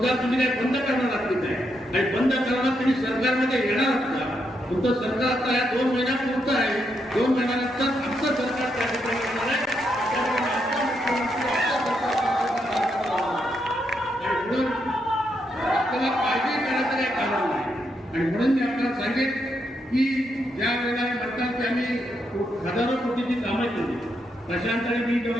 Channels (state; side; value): normal; both; correlation 0.80